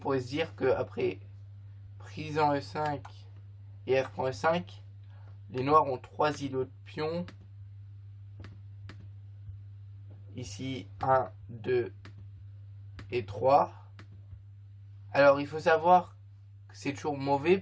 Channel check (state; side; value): identical; both; correlation 1.00